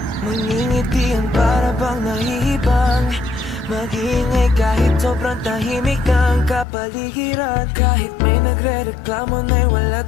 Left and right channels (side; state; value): right; drops out; at 6.7 s